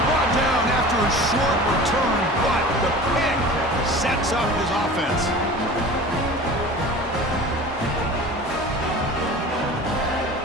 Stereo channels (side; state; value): both; normal; correlation 0.38